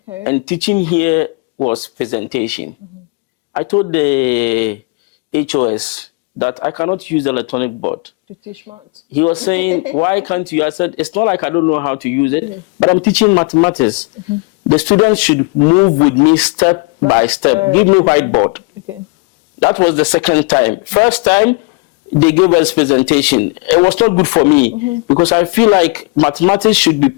And teaching here was presentation. I told the HOS that I cannot use the electronic board to teach maths. He was saying, why can't you? I said, it's not like I don't know how to use it, but I'm teaching mathematics. The students should move with me step by step. Give me whiteboard. Okay. That was the second time. First time, they gave us presentation. It was not good for me because I feel like mathematics should be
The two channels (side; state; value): right; quieter; 29.5 dB